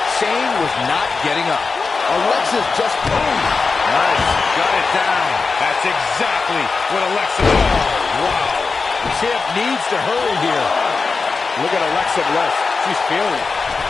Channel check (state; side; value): quieter; right; 4.4 dB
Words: Shane was not getting up. Alexa's just boom. Nice. Got it down. That's exactly what Alexa does. Wow. The champ needs to hurry here. Look at Alexa Bliss. She's feeling it.